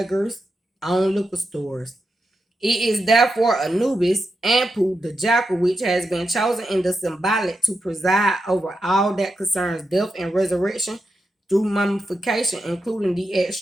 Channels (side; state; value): both; normal; correlation 0.86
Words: own liquor stores. It is therefore Anubis, Anpu, the jackal, which has been chosen in the symbolic to preside over all that concerns death and resurrection through mummification, including the